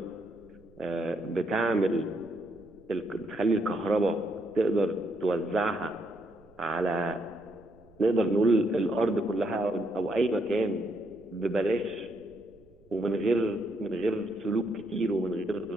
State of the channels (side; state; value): right; noise; rumble, 28 dB below the sound